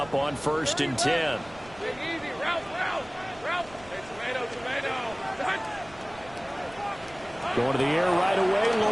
on 1st and 10. Big easy, Ralph. Hey, tomato. Going to the air right away,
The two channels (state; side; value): noise; right; rumble, 22 dB below the sound